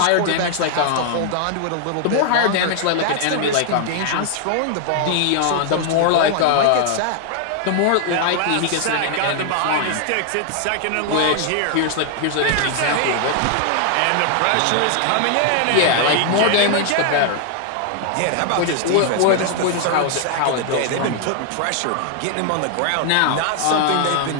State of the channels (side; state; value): both; different; correlation 0.00